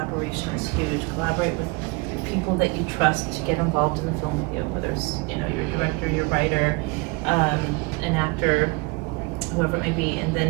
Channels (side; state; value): left; quieter; 26.9 dB